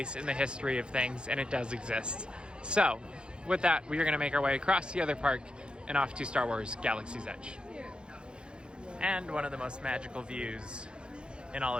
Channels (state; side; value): late; left; 0.052 ms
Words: in the history of things and it does exist. So, with that, we are going to make our way across the other park and off to Star Wars Galaxy's Edge. And one of the most magical views in all